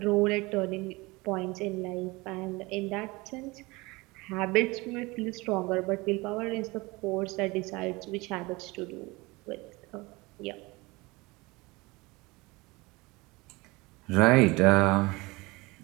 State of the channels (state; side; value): quieter; left; 23.5 dB